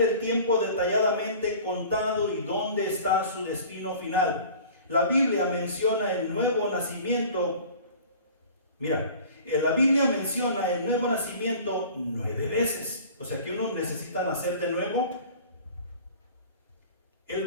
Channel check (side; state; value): both; inverted; correlation -0.44